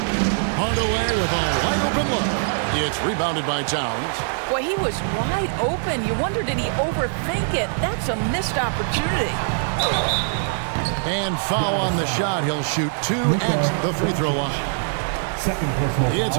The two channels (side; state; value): left; silent; digital silence